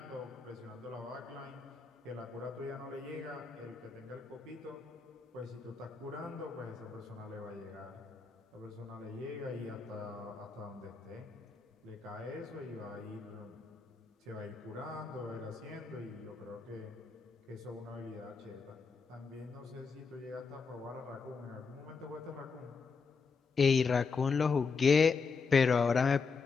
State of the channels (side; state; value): right; quieter; 5.1 dB